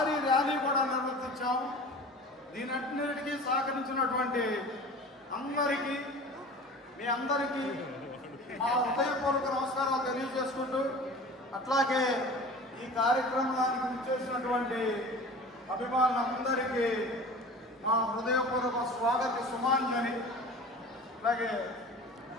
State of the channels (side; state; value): both; normal; correlation 0.39